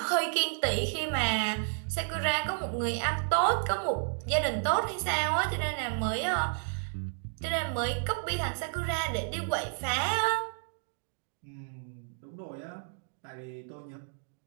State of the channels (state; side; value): silent; left; digital silence